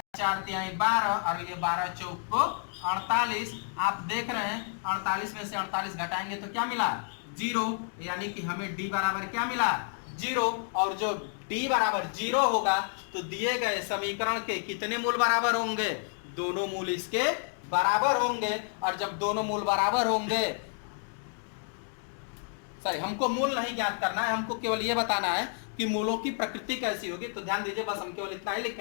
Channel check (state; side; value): silent; right; 58 dB below the other